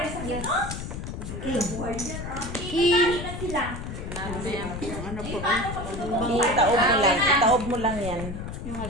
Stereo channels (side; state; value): left; noise; rumble, 7 dB below the sound